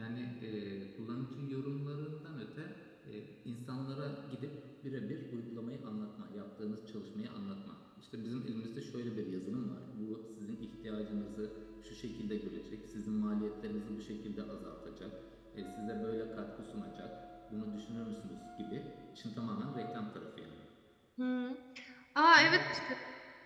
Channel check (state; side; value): identical; both; correlation 1.00